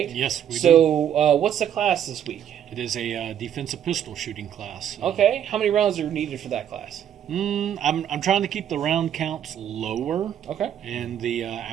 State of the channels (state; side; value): quieter; left; 9.7 dB